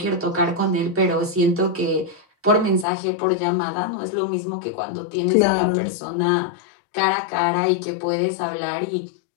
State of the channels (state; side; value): drops out; right; at 2.9 s